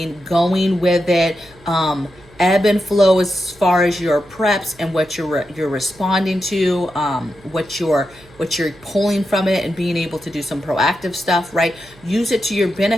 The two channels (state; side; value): noise; right; hum, 26 dB below the sound